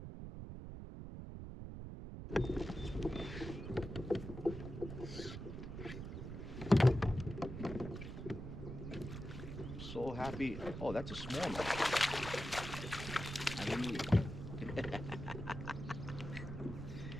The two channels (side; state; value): right; noise; rumble, 8 dB below the sound